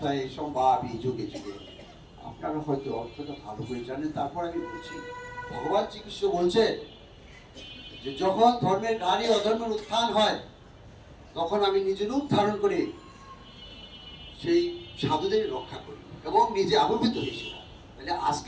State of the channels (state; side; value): identical; both; correlation 1.00